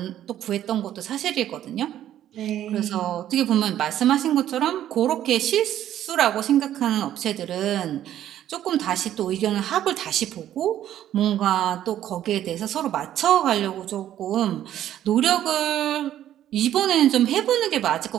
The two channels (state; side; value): quieter; left; 11.7 dB